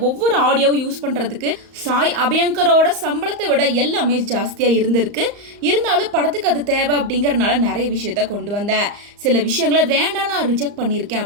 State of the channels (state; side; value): late; left; 35 ms